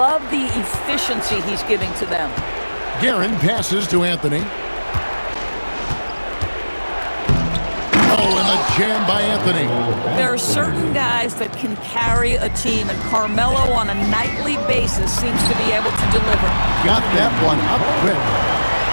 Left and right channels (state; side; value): inverted; both; correlation -1.00